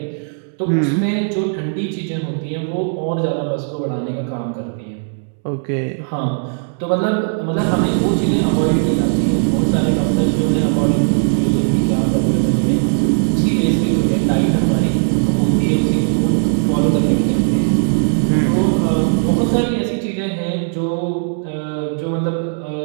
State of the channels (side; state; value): left; silent; 68 dB below the other